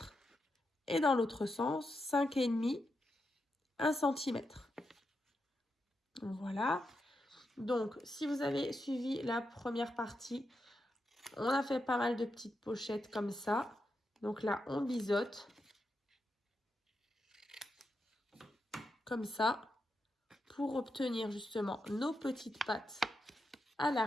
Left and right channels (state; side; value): normal; both; correlation 0.86